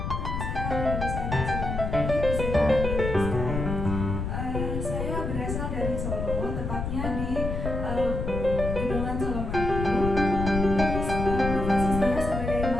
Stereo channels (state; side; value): noise; left; rumble, 3 dB below the sound